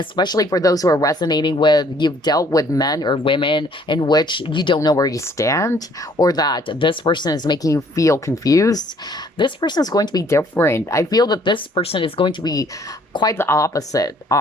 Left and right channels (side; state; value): both; normal; correlation 0.61